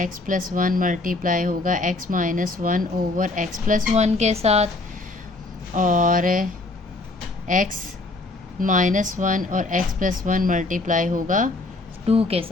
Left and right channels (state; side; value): quieter; right; 3.2 dB